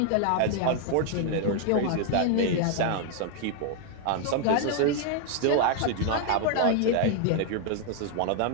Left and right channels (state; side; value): different; both; correlation 0.00